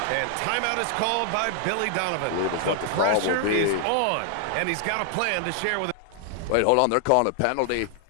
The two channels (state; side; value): different; both; correlation 0.00